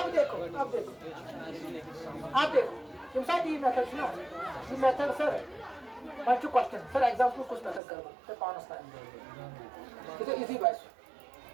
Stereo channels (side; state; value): left; drops out; at 7.8 s